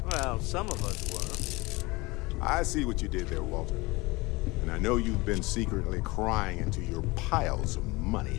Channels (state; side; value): quieter; right; 23.3 dB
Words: Well, some of us were. I see what you did there, Walter. And I know you've been secretly crying into your piles of money